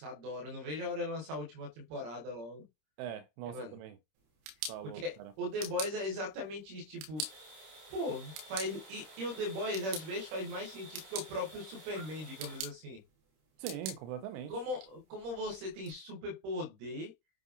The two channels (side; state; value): left; late; 27 ms